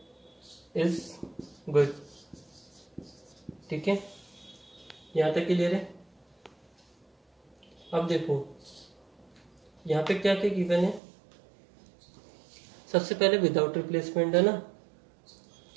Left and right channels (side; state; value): left; drops out; at 11.0 s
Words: is good। ठीक है, यहाँ तक क्लियर है? अब देखो यहाँ पे क्या क्या गिवन है। सबसे पहले विदाउट रिप्लेसमेंट है ना,